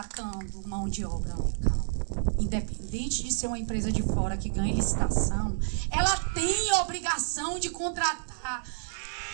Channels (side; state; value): left; silent; digital silence